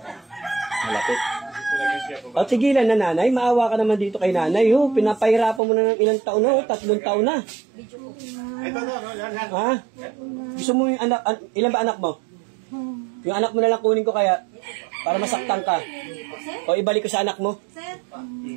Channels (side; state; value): left; drops out; at 5.6 s